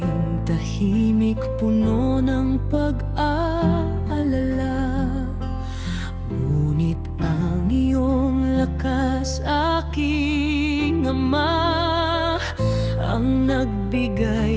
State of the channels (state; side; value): identical; both; correlation 1.00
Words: tahimik puno ng pag-aalala. Ngunit ang iyong lakas, aking Ama, ang